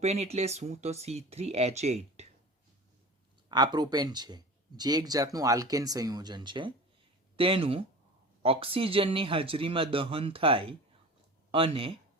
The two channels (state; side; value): normal; both; correlation 0.36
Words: એટલે શું? તો C3H8 આ પ્રોપેન છે, જે એક જાતનું આલ્કેન સંયોજન છે. તેનું ઓક્સિજનની હાજરીમાં દહન થાય અને